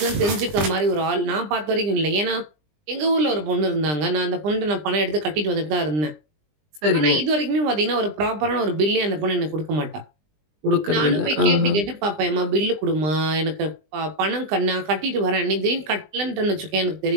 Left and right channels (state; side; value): late; left; 20 ms